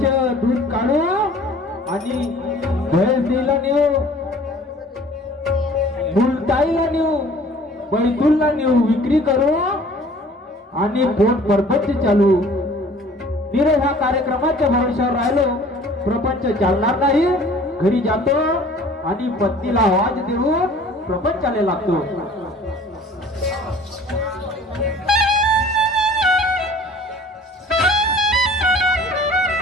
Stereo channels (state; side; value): normal; both; correlation 0.49